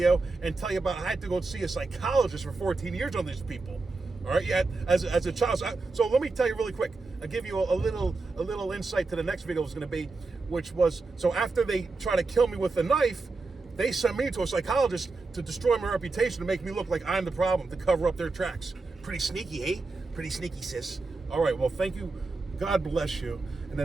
and tell you about I had to go see a psychologist for 14 years on these people. All right, yeah, as a child. So let me tell you really quick. I'll give you a little insight to the next video was going to be, which was, so after they try to kill me with a knife, they sent me to a psychologist to destroy my reputation, to make me look like I'm the problem, to cover up their tracks. Pretty sneaky, eh? Pretty sneaky, sis. All right, well, thank you. God bless you. In the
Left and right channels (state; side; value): quieter; left; 3.7 dB